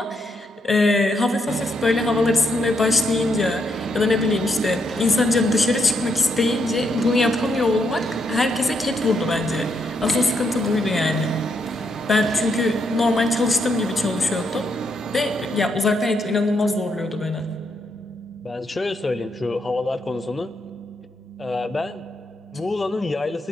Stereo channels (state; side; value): normal; both; correlation 0.78